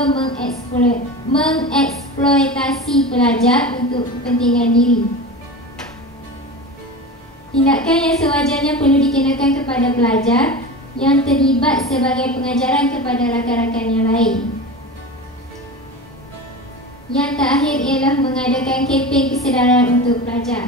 mengeksploitasi pelajar untuk kepentingan diri. Tindakan yang sewajarnya perlu dikenakan kepada pelajar yang terlibat sebagai pengajaran kepada rakan-rakan yang lain. Yang terakhir ialah mengadakan kempen kesedaran untuk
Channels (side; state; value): both; normal; correlation 0.29